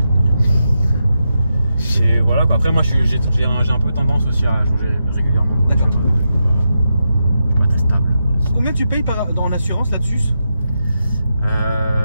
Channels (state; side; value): inverted; both; correlation -0.87